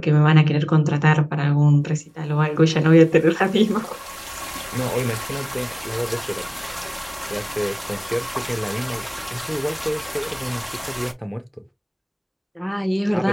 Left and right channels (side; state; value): both; identical; correlation 1.00